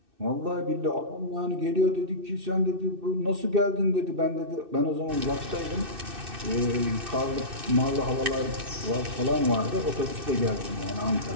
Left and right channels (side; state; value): left; late; 2.6 ms